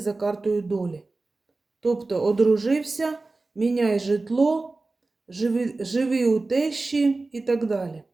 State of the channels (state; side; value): quieter; left; 3.4 dB